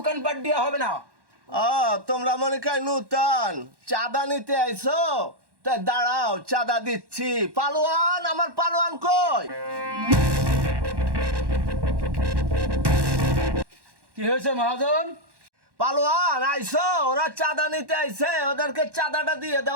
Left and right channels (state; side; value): late; left; 1.1 ms